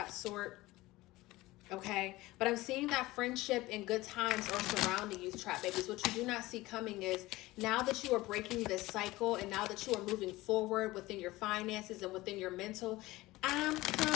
sort. Okay, but I'm seeing that friendship and good times are surrounding you, Trap Babies. What you do not see coming is now that you are breaking this cycle and now that you are moving forward within your finances and within your mental, I'm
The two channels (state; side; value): quieter; right; 19.0 dB